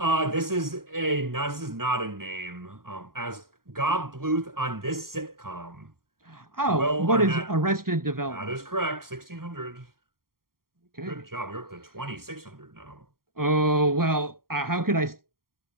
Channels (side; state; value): left; late; 0.92 ms